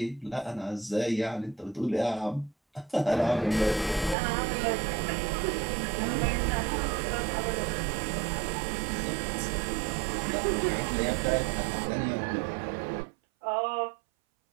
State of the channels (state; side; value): drops out; left; at 4.2 s